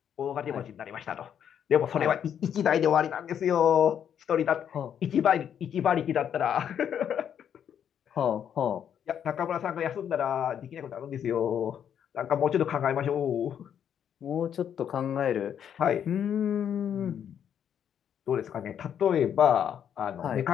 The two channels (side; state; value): right; quieter; 8.9 dB